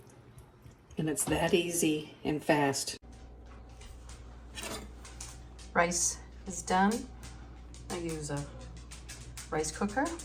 And it's that easy and fast. Rice is done. I use a rice cooker.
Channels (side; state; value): both; identical; correlation 1.00